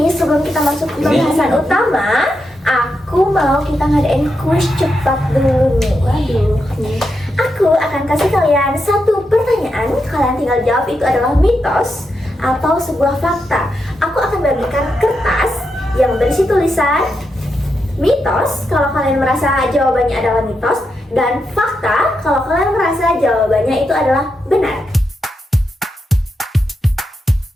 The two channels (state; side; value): normal; both; correlation 0.85